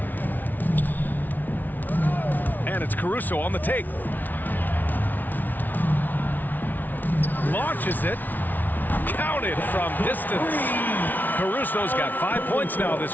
And it's Caruso on the take. Launches it. Counted from distance. Caruso's got 5 points now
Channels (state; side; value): late; right; 0.083 ms